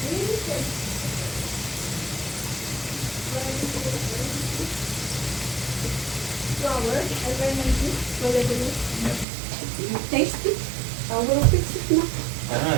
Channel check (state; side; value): drops out; left; at 9.2 s